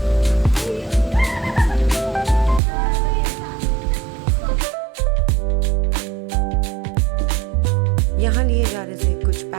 यहाँ लिए जा रहे थे कुछ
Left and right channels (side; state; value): left; drops out; at 2.6 s